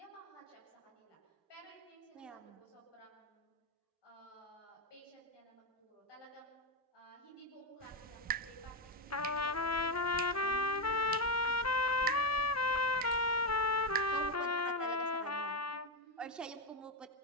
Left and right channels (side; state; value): both; normal; correlation 0.08